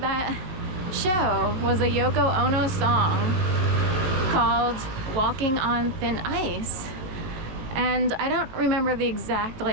show was a Yoko Ono song called Walking on Thin Ice. And I don't remember the exact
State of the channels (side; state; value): left; late; 18 ms